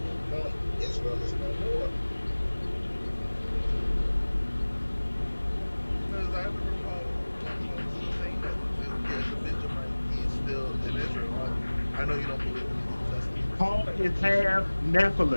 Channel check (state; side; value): inverted; both; correlation -1.00